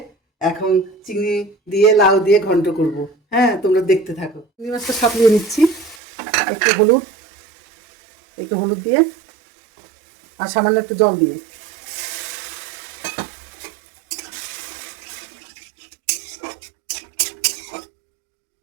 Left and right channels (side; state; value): left; drops out; at 6.0 s